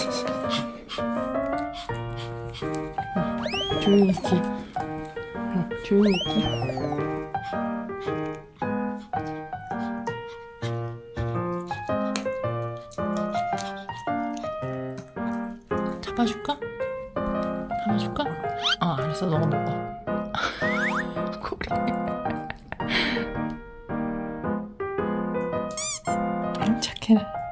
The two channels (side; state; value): both; identical; correlation 1.00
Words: 조용히 있기. 조용히 있기. 잡아줄까? 잡아줄까? 알았어. 너가 먹어. 고리. 아이 착해라.